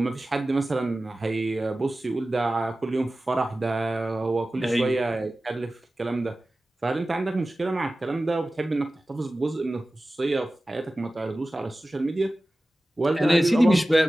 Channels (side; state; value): both; normal; correlation 0.96